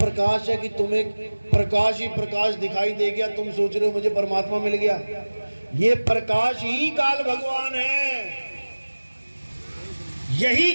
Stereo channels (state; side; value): inverted; both; correlation -1.00